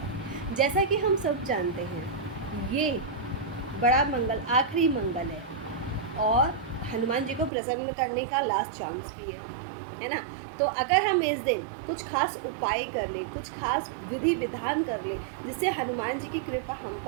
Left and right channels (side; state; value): left; drops out; at 7.5 s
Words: जैसा कि हम सब जानते हैं, ये बड़ा मंगल आखिरी मंगल है और हनुमान जी को प्रसन्न करने का लास्ट चांस भी है ना। तो अगर हम इस दिन कुछ खास उपाय कर लें, कुछ खास विधि विधान कर लें, जिससे हनुमान जी की कृपा हम